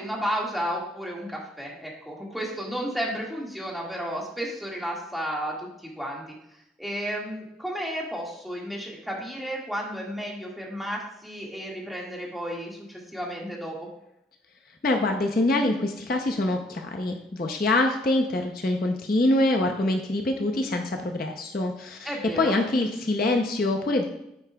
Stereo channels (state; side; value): normal; both; correlation 0.65